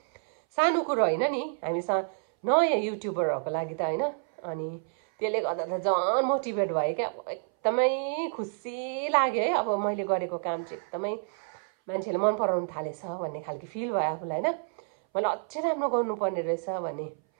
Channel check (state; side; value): silent; left; 59 dB below the other